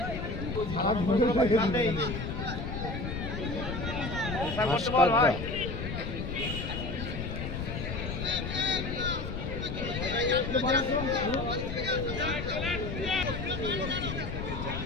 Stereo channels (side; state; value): left; noise; rumble, 4 dB below the sound